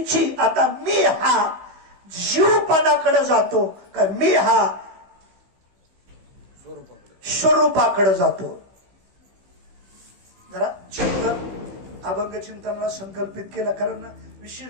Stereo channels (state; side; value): late; left; 15 ms